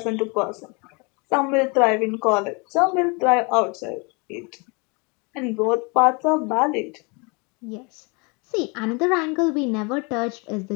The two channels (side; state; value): right; quieter; 30.7 dB